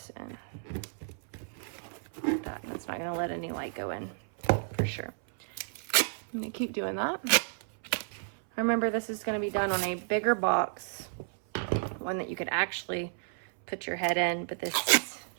in. Like that. That's not going to let any light go in for sure. I'm going to keep doing that. Remember, this is going to be done on a bigger box, one that you could actually put your head in, but this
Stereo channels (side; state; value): left; silent; 57 dB below the other